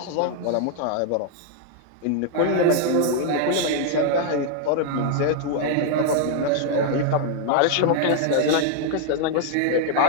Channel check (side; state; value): both; different; correlation 0.00